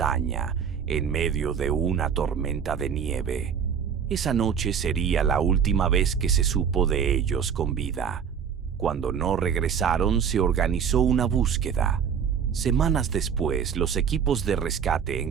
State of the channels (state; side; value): quieter; left; 7.5 dB